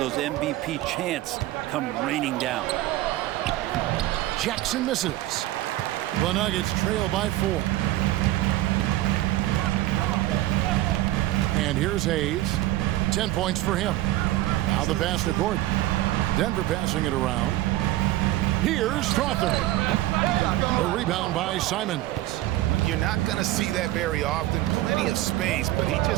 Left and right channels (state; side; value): quieter; left; 16.0 dB